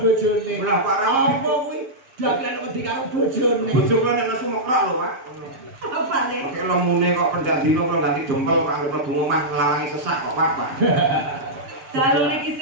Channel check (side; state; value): left; late; 7.5 ms